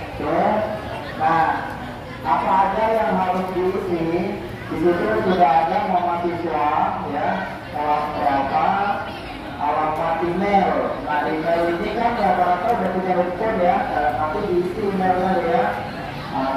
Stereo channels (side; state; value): both; identical; correlation 1.00